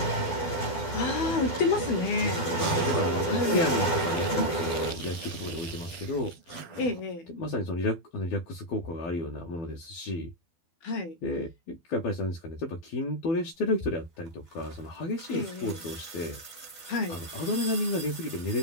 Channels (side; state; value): right; late; 12 ms